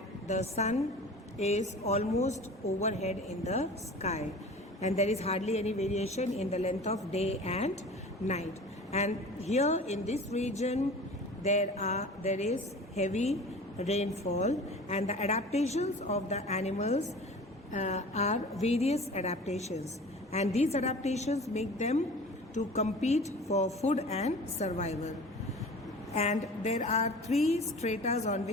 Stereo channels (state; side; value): normal; both; correlation 0.40